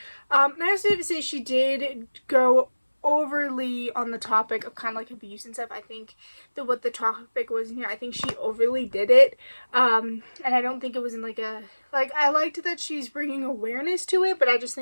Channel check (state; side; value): inverted; both; correlation -1.00